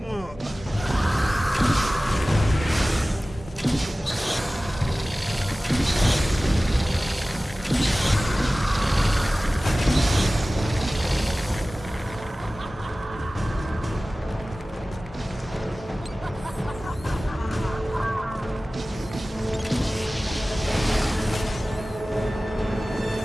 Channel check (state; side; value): normal; both; correlation 0.97